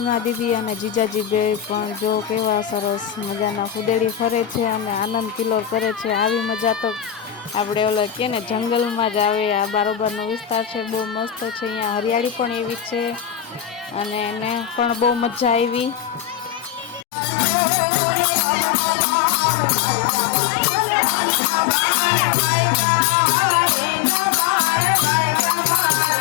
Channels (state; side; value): drops out; right; at 17.1 s